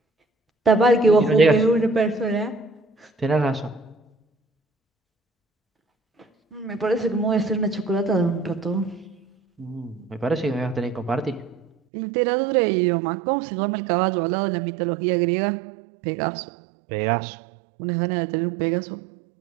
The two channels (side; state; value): left; drops out; at 11.7 s